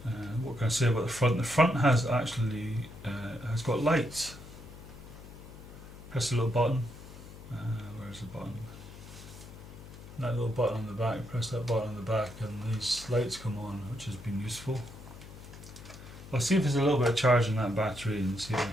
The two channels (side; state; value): left; noise; hum, 16 dB below the sound